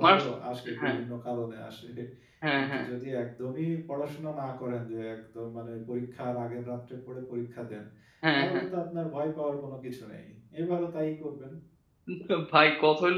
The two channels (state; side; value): identical; both; correlation 1.00